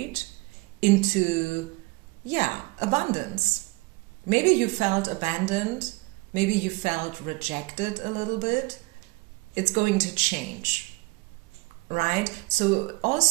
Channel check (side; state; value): left; quieter; 24.9 dB